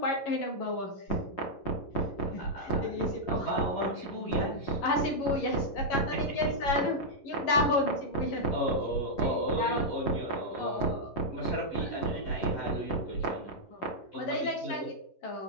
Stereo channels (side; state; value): right; late; 11 ms